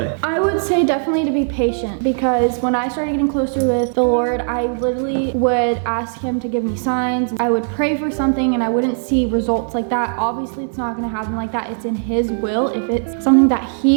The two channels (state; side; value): silent; left; digital silence